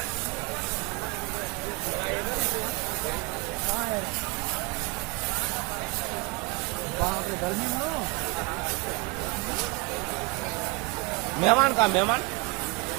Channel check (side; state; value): left; quieter; 25.8 dB